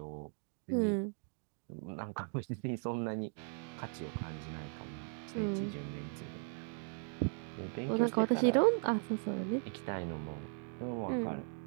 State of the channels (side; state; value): left; silent; 52 dB below the other